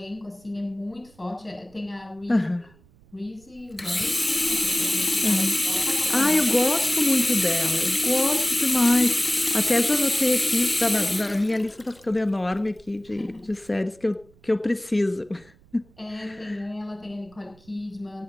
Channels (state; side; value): noise; right; rumble, 28 dB below the sound